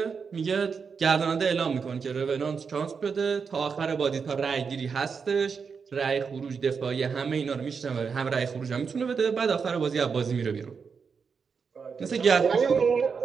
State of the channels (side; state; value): left; quieter; 5.8 dB